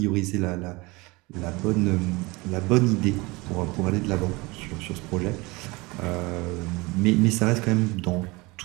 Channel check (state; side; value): quieter; left; 24.0 dB